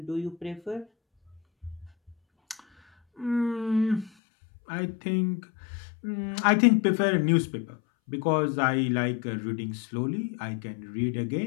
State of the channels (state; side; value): drops out; right; at 4.1 s